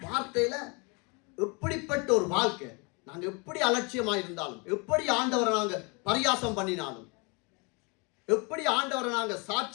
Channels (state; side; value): quieter; right; 31.1 dB